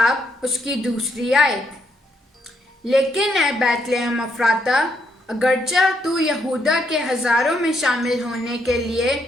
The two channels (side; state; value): both; normal; correlation 0.76